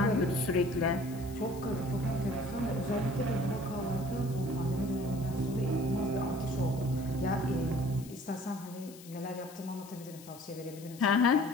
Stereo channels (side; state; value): left; noise; hiss, 19 dB below the sound